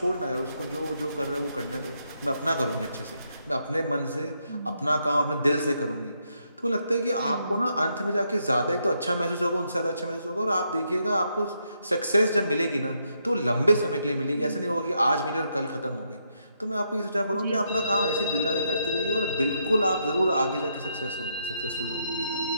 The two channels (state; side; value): inverted; both; correlation -0.78